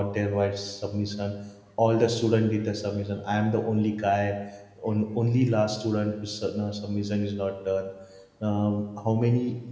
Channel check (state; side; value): identical; both; correlation 1.00